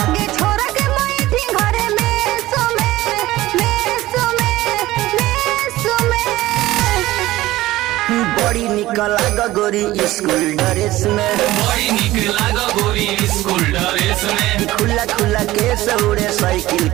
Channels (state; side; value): quieter; left; 16.8 dB